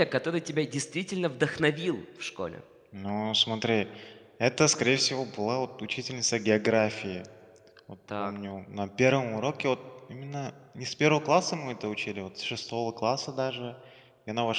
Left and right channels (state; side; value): identical; both; correlation 1.00